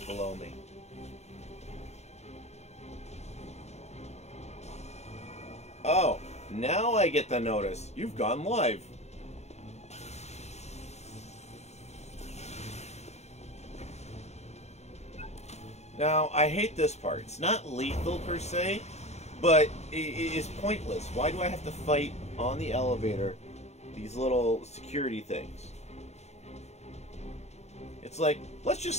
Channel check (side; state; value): right; late; 0.32 ms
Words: below me. Oh, now I get the notice. You've gone live. Now, I hate this part. It's not lethal per se, but it is pointless. Why do I have to fight on the elevator these little security things? It's like, let's